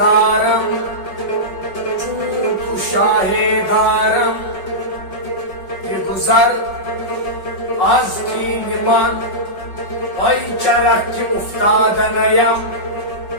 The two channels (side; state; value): right; late; 5.3 ms